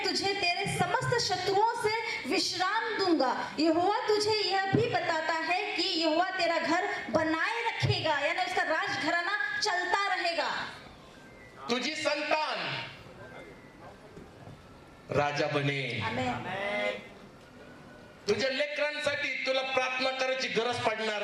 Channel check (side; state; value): both; identical; correlation 1.00